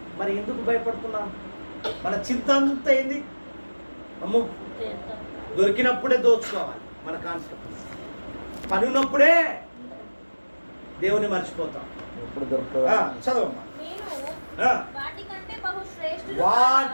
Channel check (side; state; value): both; inverted; correlation -1.00